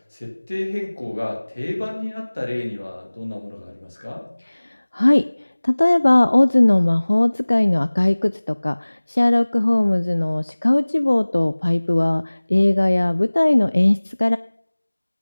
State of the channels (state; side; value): inverted; both; correlation -1.00